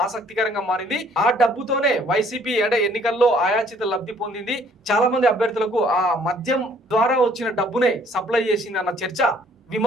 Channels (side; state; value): both; normal; correlation 0.60